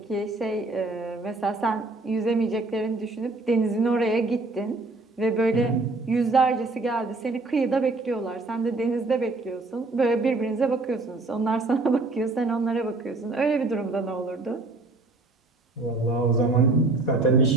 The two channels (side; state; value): left; quieter; 3.2 dB